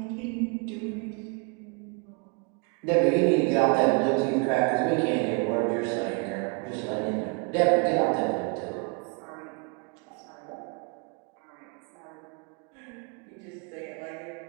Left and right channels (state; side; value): quieter; left; 35.7 dB